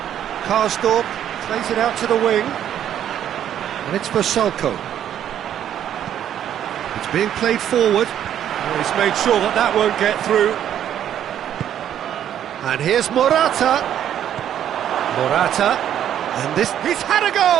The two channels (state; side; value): quieter; left; 10.3 dB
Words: Karsdorp plays it out to the wing. And it's for Salko. It's being played forward. Well, he's made sure that that won't get through. And here's Morata. Morata. And this... He's had a